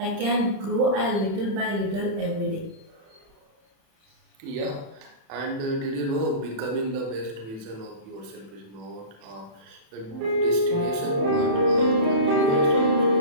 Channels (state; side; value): late; left; 36 ms